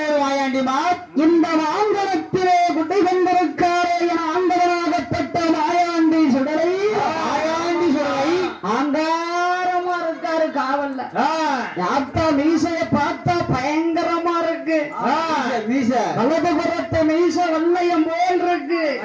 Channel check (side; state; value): both; identical; correlation 1.00